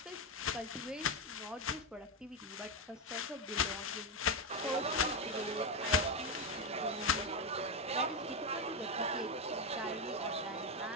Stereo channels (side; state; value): both; normal; correlation 0.09